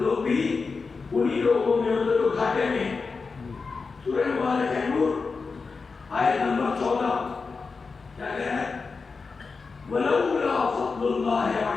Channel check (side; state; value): right; quieter; 4.6 dB